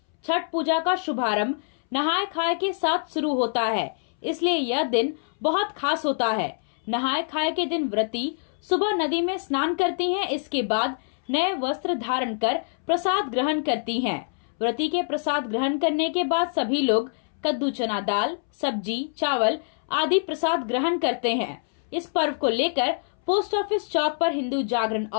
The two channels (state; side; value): silent; right; 62 dB below the other